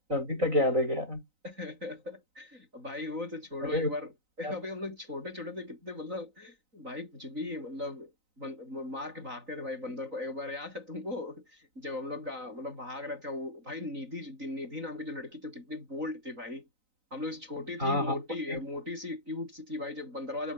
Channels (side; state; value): left; late; 3.9 ms